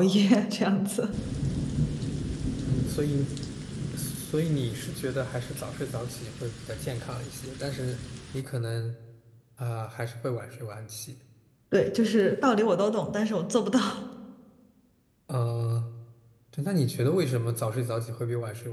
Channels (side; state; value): both; identical; correlation 1.00